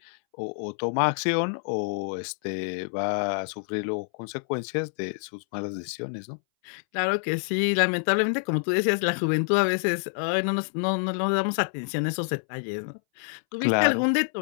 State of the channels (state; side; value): silent; right; 60 dB below the other